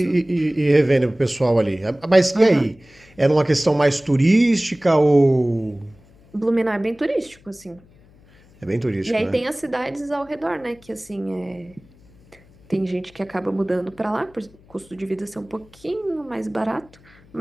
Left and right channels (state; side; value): noise; left; hum, 28 dB below the sound